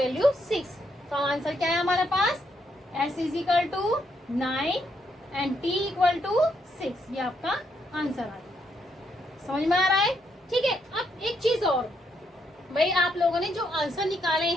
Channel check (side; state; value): both; normal; correlation 0.76